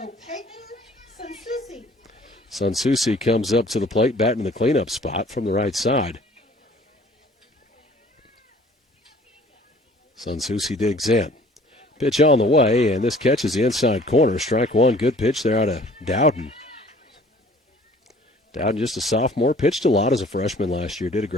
Peyton Sansusi. Sansusi comes up to the plate, batting in the cleanup spot from the right side. Sansusi digs in. Pitch on the way, and this catches the inside corner. Strike one. Good pitch there out of Dowden. Dowden, just a sophomore, pitched a lot as a freshman last year. Did a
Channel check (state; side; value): normal; both; correlation 0.52